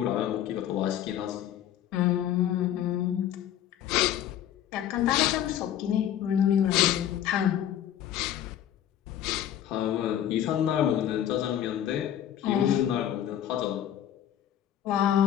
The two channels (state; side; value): quieter; right; 10.9 dB